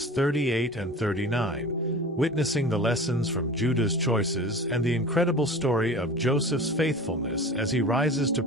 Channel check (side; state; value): both; normal; correlation 0.37